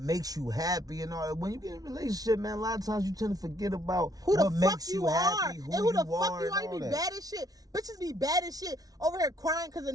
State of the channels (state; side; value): late; left; 0.18 ms